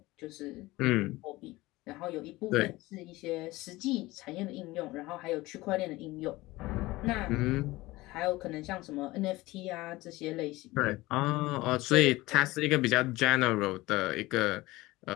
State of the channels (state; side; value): quieter; right; 19.6 dB